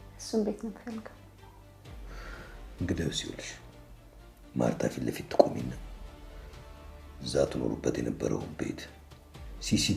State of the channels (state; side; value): identical; both; correlation 1.00